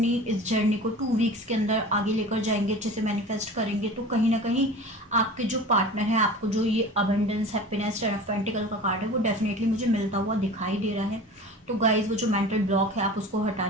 इस जर्नी को 2 वीक्स के अंदर आगे लेकर जाएंगे, अच्छे से मैनिफेस्ट करेंगे, तो कहीं ना कहीं आपके जो पार्टनर है, आपको जो ये abundance happiness ten of pentacle का कार्ड है वो डेफिनेटली मुझे मिलता हुआ दिखाई दे रहा है। तो गाइज वो जो मेंटल ब्लॉक है आप उसको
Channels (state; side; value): normal; both; correlation 0.37